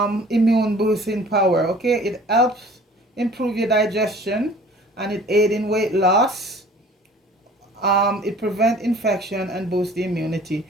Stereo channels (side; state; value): both; normal; correlation 0.49